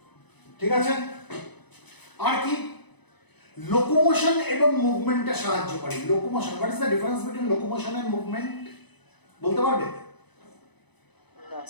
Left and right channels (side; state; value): right; late; 0.99 ms